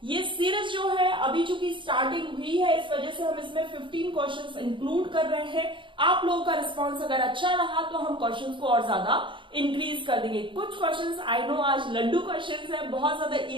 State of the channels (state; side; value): late; left; 0.24 ms